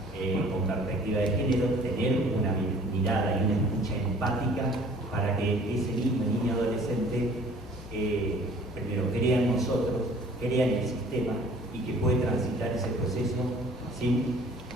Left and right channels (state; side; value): normal; both; correlation 0.52